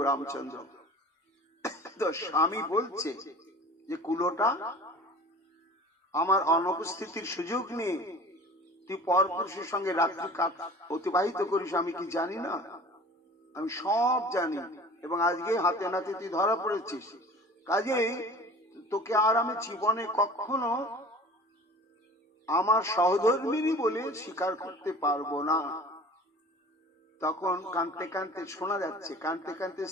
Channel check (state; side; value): normal; both; correlation 0.42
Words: রামচন্দ্র। তো স্বামী বলছে যে কুলোটা, আমার অনুপস্থিতির সুযোগ নিয়ে তুই পরপুরুষের সঙ্গে রাত্রি অতিবাহিত করিস, আমি কি জানি না? আমি সব জানি, এবং আজকে হাতে নাতে তুই ধরা পড়েছিস, কাজেই তোকে আর আমি জীবনে কখনো আমার সহধর্মিনী বলে স্বীকার করতে পারবো না। তখন কাঁদতে কাঁদতে শোনা যাচ্ছে, কাঁদতে কাঁদতে